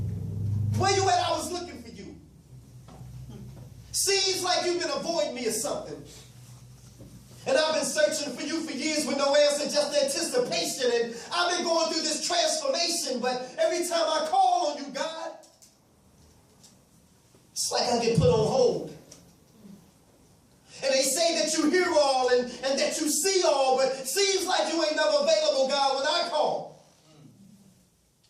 where you at? I was looking for you. Seems like you've been avoiding me or something. And I've been searching for you for years with no answer, just anticipation. And I've been going through this transformation, but every time I call on you, God, it's like I get put on hold. And they say that you hear all and that you see all, but it seems like you ain't never available, God, when I call.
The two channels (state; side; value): identical; both; correlation 1.00